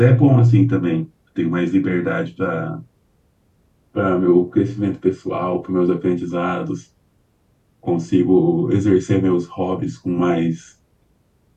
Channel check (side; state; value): both; identical; correlation 1.00